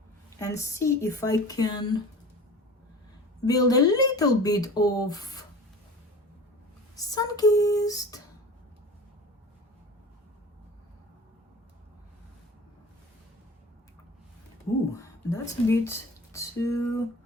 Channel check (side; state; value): both; normal; correlation 0.38